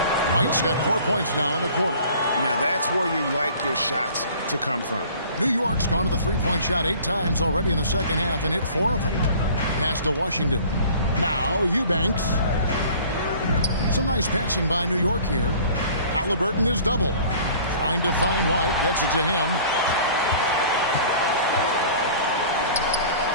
White's got 4 points now in the quarter. Now that's where you like your shots to come from. New York's gone to the 3-point shot 8 times already in the second half and hit 4 of them. Pass to Washington. Now Eubanks. Some nice passing by New York here. Halliburton is double. Trying to find White. Gets it to him.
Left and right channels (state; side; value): inverted; both; correlation -0.48